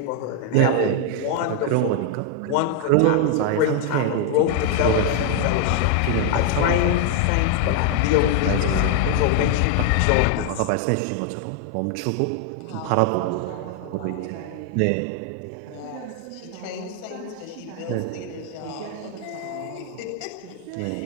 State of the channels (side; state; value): both; different; correlation 0.00